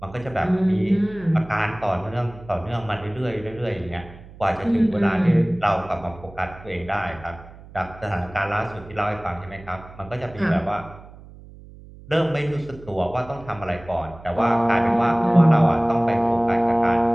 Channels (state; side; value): noise; right; hum, 19 dB below the sound